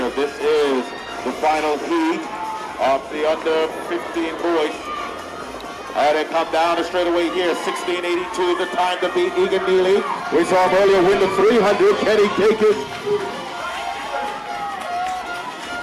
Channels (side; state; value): both; identical; correlation 1.00